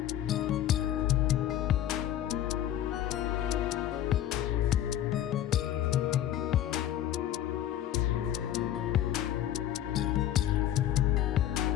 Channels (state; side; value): quieter; right; 11.7 dB